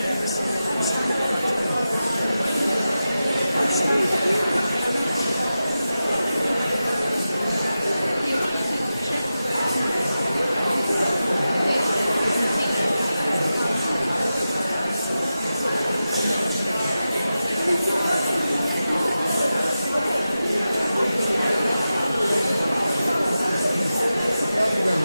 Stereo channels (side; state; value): both; inverted; correlation -0.92